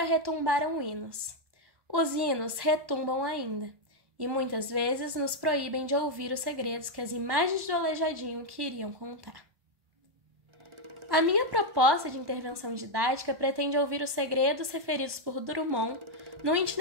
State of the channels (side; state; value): left; late; 1.2 ms